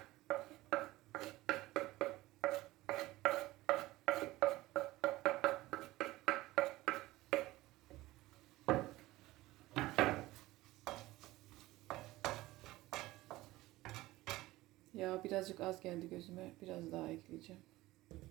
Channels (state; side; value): quieter; left; 18.1 dB